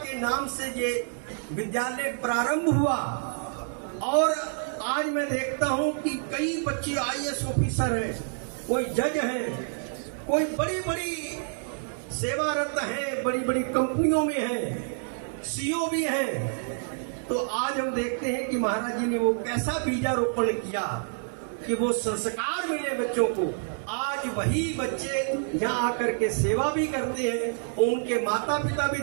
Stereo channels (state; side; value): silent; left; digital silence